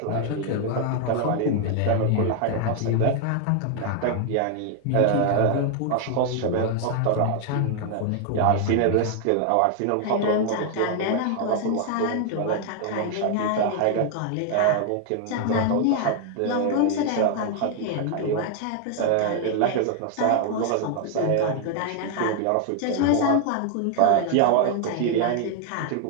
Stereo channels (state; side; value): different; both; correlation 0.00